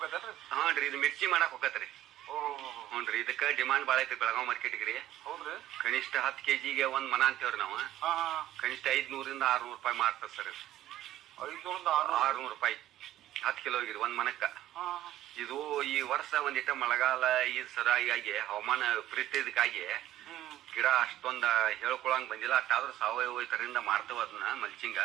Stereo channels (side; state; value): left; quieter; 13.5 dB